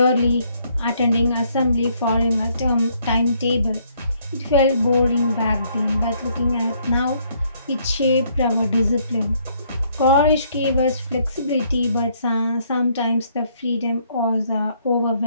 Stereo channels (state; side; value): inverted; both; correlation -0.68